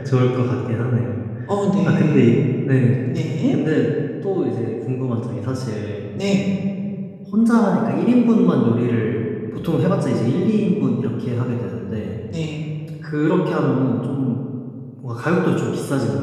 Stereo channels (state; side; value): identical; both; correlation 1.00